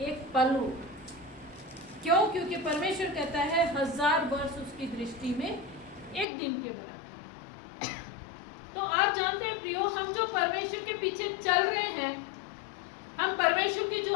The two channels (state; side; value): drops out; right; at 6.2 s